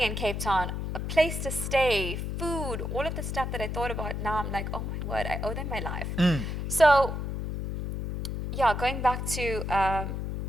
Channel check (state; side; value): noise; left; hum, 4 dB below the sound